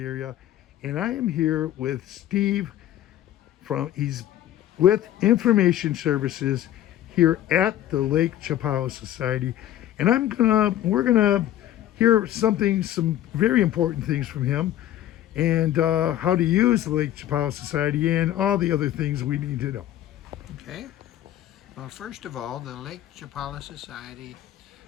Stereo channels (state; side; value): quieter; right; 12.6 dB